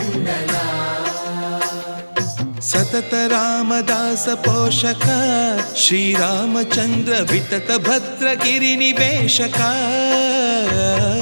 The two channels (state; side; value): inverted; both; correlation -1.00